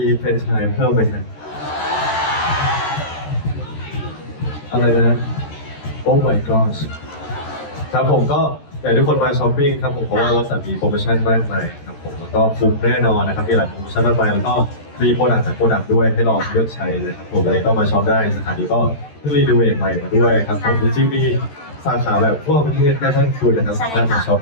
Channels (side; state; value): right; late; 13 ms